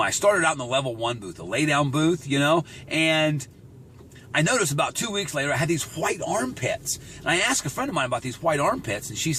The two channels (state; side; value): identical; both; correlation 1.00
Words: I started out in the level 1 booth, a lay down booth, you know, and I noticed about 2 weeks later I had these white armpits. And I asked a friend of mine about these white armpits, and she